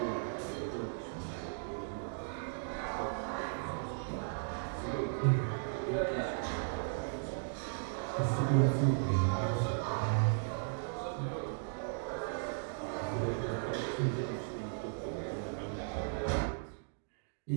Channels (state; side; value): silent; left; digital silence